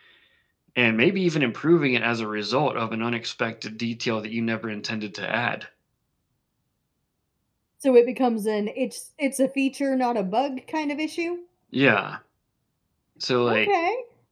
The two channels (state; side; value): identical; both; correlation 1.00